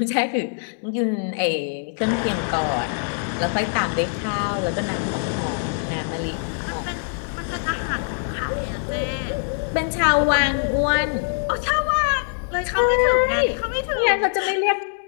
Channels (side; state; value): right; silent; digital silence